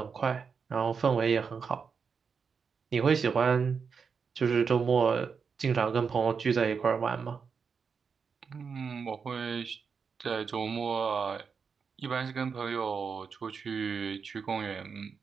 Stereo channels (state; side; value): quieter; left; 5.8 dB